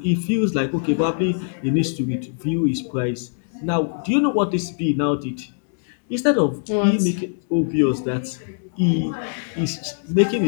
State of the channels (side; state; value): right; silent; digital silence